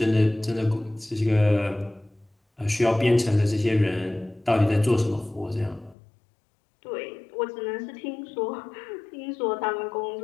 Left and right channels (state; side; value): drops out; right; at 6.0 s